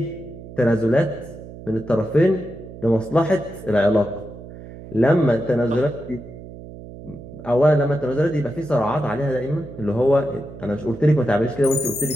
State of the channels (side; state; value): right; noise; hum, 15 dB below the sound